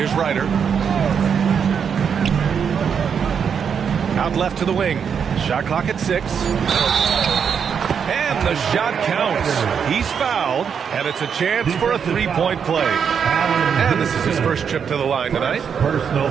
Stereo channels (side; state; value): left; quieter; 7.1 dB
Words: Ryder. Out left to the wing. Shot clock at 6. And the shot counts. He's fouled, and it's a chance for a 3-point play. And this is his first trip to the line tonight. Personal